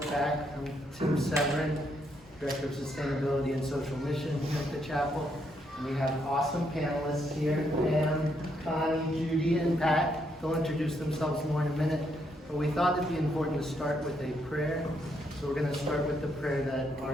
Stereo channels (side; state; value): both; normal; correlation 0.76